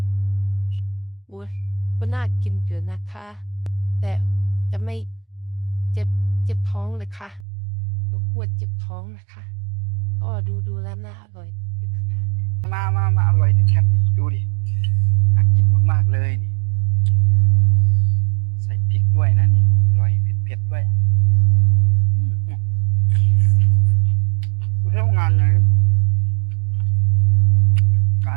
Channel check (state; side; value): drops out; left; at 7.5 s